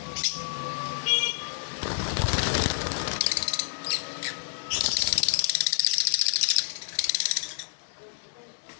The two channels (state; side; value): silent; right; 59 dB below the other